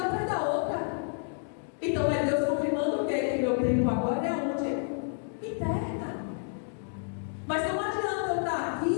atrás da outra. Então é Deus confirmando o quê? Que meu tempo agora é onde? Interna. Mas não adianta eu estar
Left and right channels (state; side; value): silent; right; digital silence